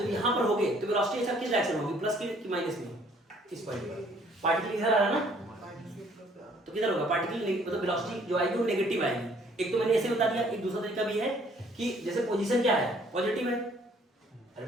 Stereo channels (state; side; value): normal; both; correlation 0.61